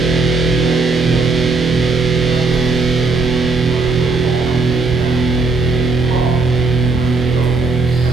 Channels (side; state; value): left; quieter; 3.9 dB